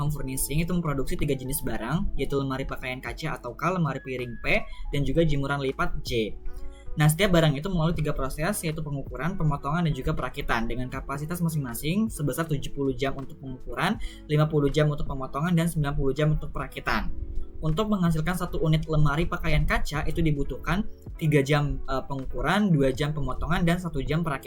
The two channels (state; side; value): identical; both; correlation 1.00